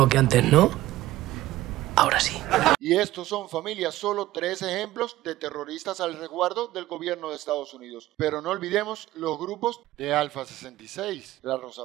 que antes, ¿no? Ahora sí. Y estos son, familia, solo 3 ejemplos de terroristas al resguardo del gobierno de Estados Unidos. Pero no olvidemos los grupos de Alfa 66, la Rosa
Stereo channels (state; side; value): quieter; left; 16.0 dB